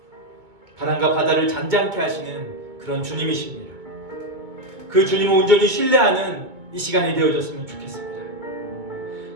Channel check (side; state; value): left; late; 2.2 ms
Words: 바람과 바다를 잔잔케 하시는 그런 주님이십니다. 그 주님을 온전히 신뢰하는 이 시간이 되어졌으면 좋겠습니다.